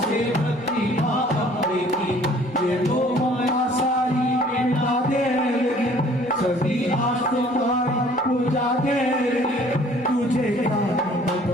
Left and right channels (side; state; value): both; normal; correlation 0.55